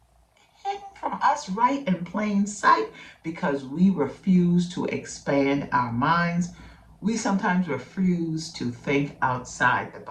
hidden from us right in plain sight because we refuse to expand our minds. We sometimes refuse to think outside the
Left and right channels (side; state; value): both; identical; correlation 1.00